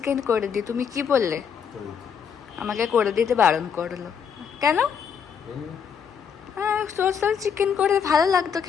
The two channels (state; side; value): quieter; right; 7.2 dB